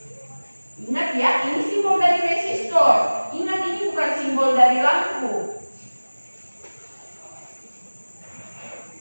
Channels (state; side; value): inverted; both; correlation -1.00